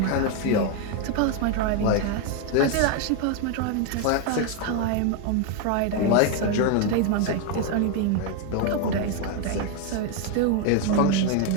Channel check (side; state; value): both; different; correlation 0.01